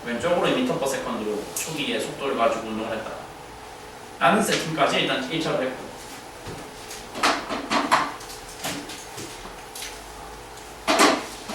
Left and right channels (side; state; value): both; identical; correlation 1.00